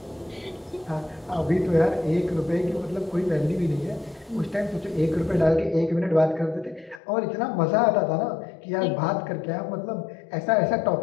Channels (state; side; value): drops out; right; at 7.0 s